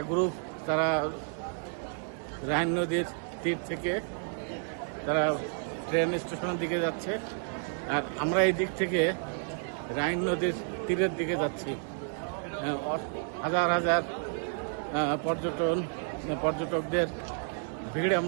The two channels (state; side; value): silent; left; 57 dB below the other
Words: গ্রুপ তারা রাইন নদীর তীর থেকে তারা ট্রেন স্টেশনের দিকে যাচ্ছে, আর আমরা এই দিক থেকে রাইন নদীর তীরের দিকে যাচ্ছি। হাজার হাজার পর্যটকদের ভিড়